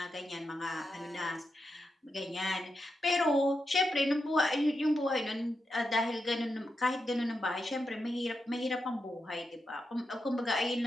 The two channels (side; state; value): both; normal; correlation 0.87